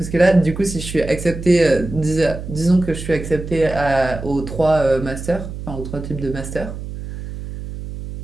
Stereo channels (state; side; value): noise; right; hum, 9 dB below the sound